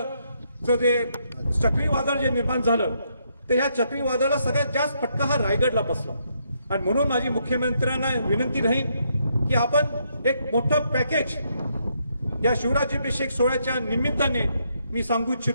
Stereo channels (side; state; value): both; inverted; correlation -0.75